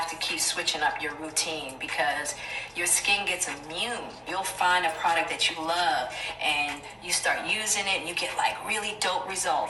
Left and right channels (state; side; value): identical; both; correlation 1.00